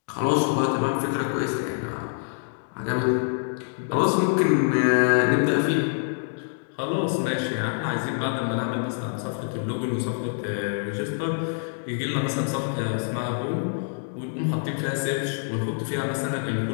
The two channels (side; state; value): right; silent; digital silence